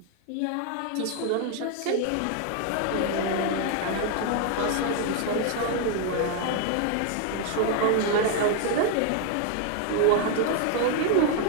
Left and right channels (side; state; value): both; different; correlation 0.00